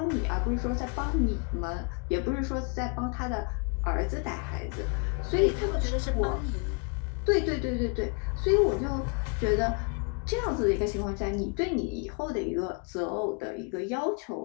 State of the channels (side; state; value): right; quieter; 35.1 dB